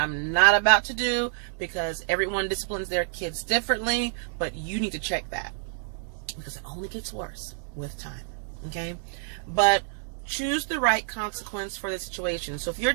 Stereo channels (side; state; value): left; silent; digital silence